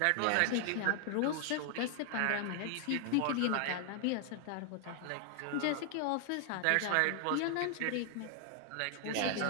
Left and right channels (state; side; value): different; both; correlation 0.00